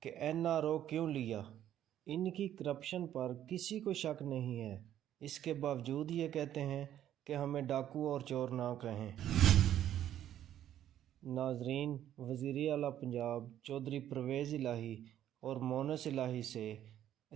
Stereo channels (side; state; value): left; quieter; 11.3 dB